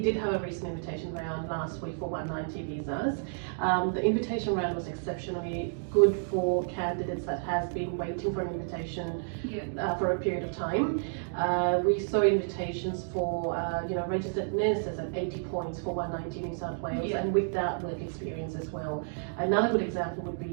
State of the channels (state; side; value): silent; left; digital silence